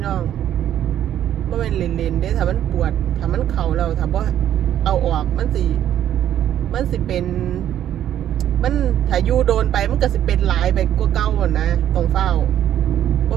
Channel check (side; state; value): left; quieter; 11.0 dB